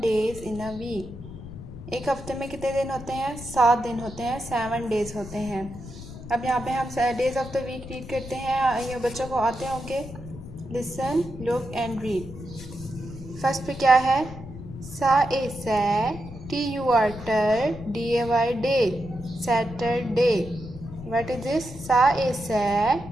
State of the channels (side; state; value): left; noise; rumble, 13 dB below the sound